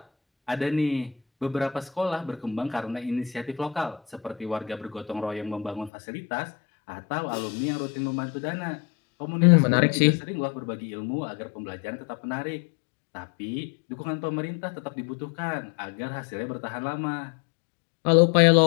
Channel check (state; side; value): drops out; right; at 5.9 s